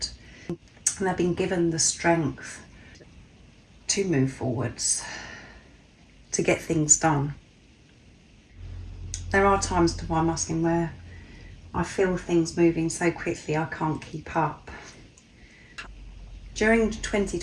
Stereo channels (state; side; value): identical; both; correlation 1.00